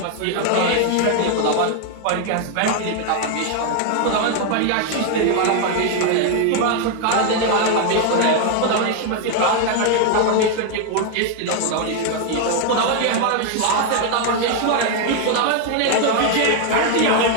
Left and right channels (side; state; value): both; different; correlation 0.00